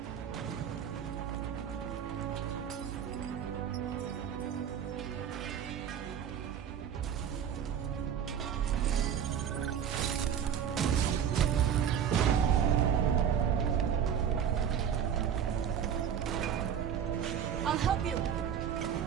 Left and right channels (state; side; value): quieter; left; 8.4 dB